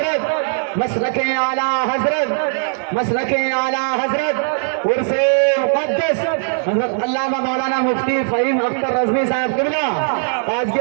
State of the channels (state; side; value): silent; left; 64 dB below the other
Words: مسلک اعلیٰ حضرت، مسلک اعلیٰ حضرت، عرس مقدس حضرت علامہ مولانا مفتی فہیم اختر رضوی صاحب قبلہ آج